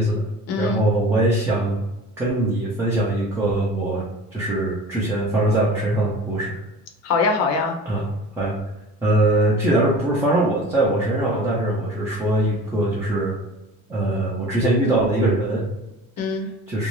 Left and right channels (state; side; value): normal; both; correlation 0.40